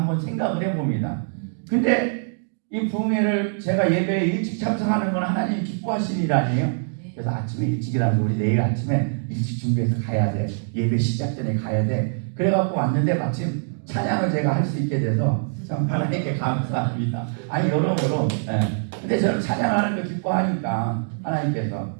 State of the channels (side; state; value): left; silent; digital silence